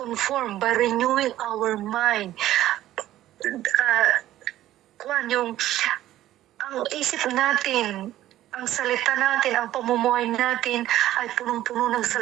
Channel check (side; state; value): left; quieter; 13.8 dB